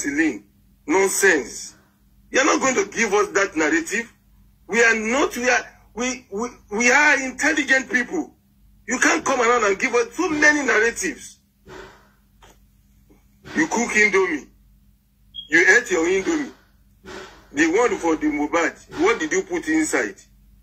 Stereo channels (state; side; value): identical; both; correlation 1.00